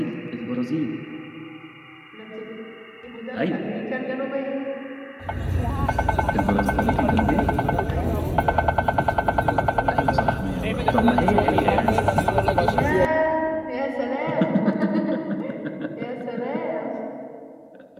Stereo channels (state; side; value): identical; both; correlation 1.00